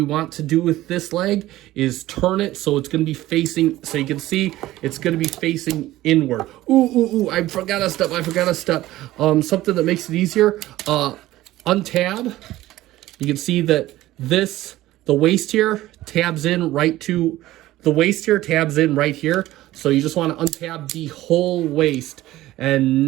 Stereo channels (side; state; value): left; quieter; 16.0 dB